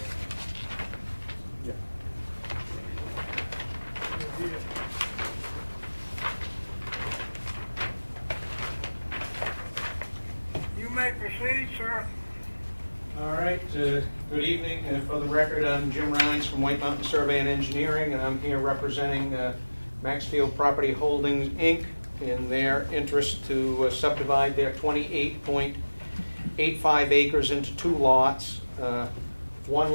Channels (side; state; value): both; inverted; correlation -1.00